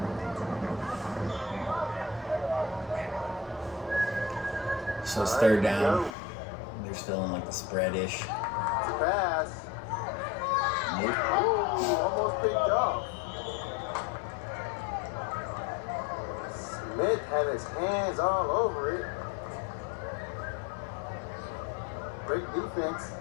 So it's 3rd down. They're still in like the spread-ish. Pass. Nope. Ooh, almost picked off. Smith had his hands all over it. Great defense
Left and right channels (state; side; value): drops out; right; at 6.2 s